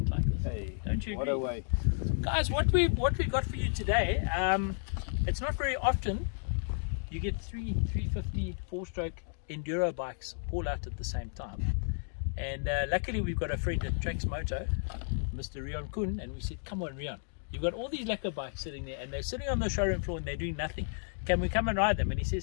like this. Hey, don't you what agree? a way. Guys, what we got for you today, it's not very often you get 350 4-stroke enduro bikes all out at the same time. And luckily we've got a friend at Trax Moto, Mr. Rian Kun, and we said, come on Rian, you've got all these lekker bikes sitting there and they're sitting on the showroom floor and they're doing nothing. Can we come and ride them? And he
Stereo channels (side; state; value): right; silent; digital silence